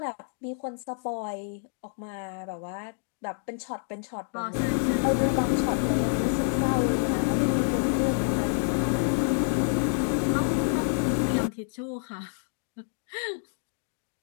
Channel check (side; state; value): right; silent; 59 dB below the other